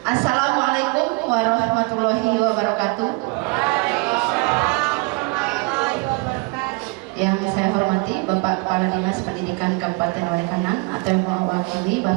Assalamualaikum warahmatullahi wabarakatuh. Yang saya hormati Bapak Kepala Dinas Pendidikan Kabupaten Walenganang atau yang mewakili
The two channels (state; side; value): quieter; left; 28.8 dB